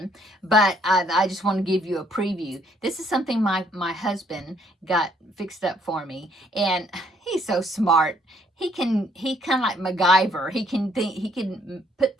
but I just want to give you a preview. This is something my husband got fixed up for me, and he's so smart. He kind of like MacGyver. He can put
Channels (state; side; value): normal; both; correlation 0.66